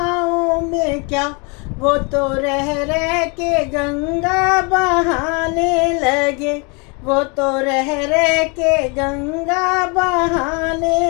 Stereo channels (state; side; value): quieter; right; 32.0 dB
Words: में क्या। वो तो रह रह के गंगा बहाने लगे, वो तो रह रह के गंगा